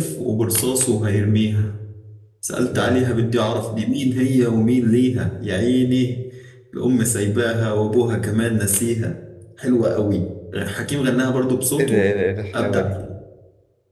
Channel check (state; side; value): identical; both; correlation 1.00